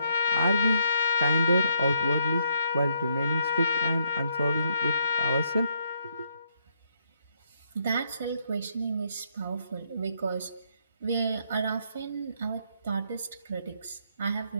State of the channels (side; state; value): both; inverted; correlation -0.73